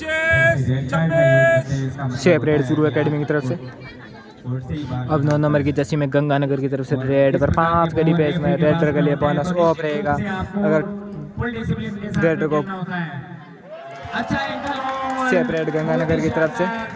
शेप रेड चूरू एकेडमी की तरफ से। अब 9 नंबर की जर्सी में गंगानगर की तरफ से रेड पर 5 के डिफेंस में रेडर के लिए बोनस ऑफ रहेगा। अगर रेडर को शेप रेड गंगानगर की तरफ से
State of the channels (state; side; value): identical; both; correlation 1.00